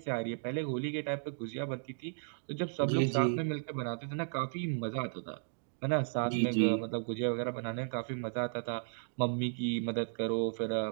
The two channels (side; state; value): left; silent; digital silence